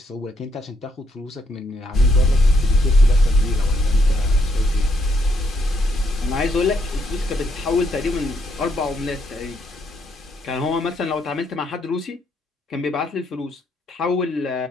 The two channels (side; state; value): both; normal; correlation 0.74